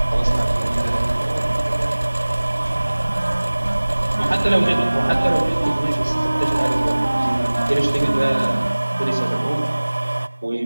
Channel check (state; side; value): inverted; both; correlation -1.00